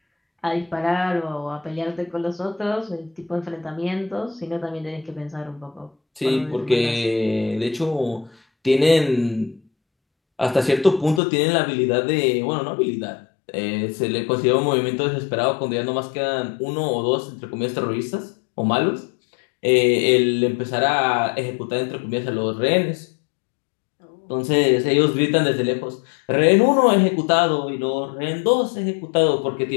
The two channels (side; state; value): right; drops out; at 11.2 s